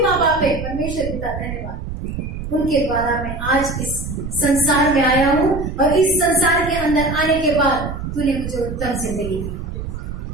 माँ बाप है, परमेश्वर पिता धन्यवाद, उनके द्वारा मैं आज इस संसार में आया हूँ, और इस संसार के अंदर आने के बाद तूने मुझे उत्तम जिंदगी दी।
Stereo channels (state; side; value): noise; right; rumble, 8 dB below the sound